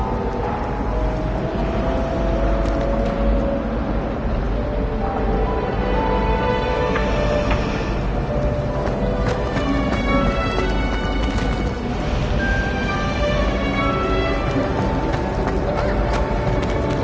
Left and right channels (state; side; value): identical; both; correlation 1.00